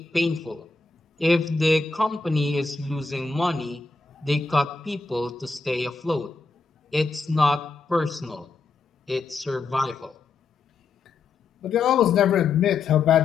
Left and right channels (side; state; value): right; quieter; 4.3 dB